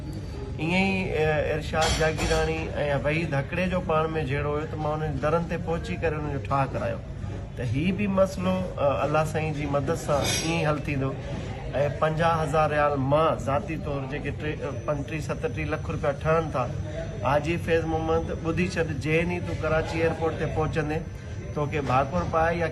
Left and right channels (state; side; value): identical; both; correlation 1.00